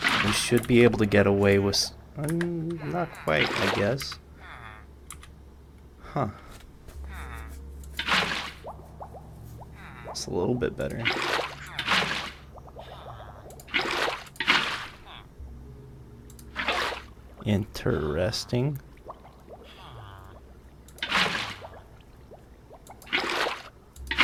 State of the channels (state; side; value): identical; both; correlation 1.00